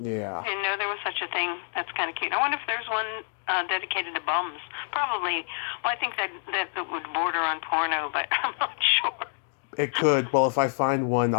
Didn't know there was such a thing. That's kind of cute. I wonder if there's one dedicated to bums. Probably. Well, I think that would border on porno, but I'm not sure. It could. Well, if I find one,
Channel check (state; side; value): silent; right; digital silence